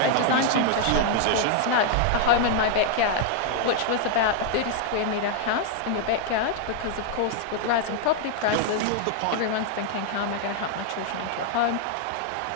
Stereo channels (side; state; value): both; different; correlation 0.00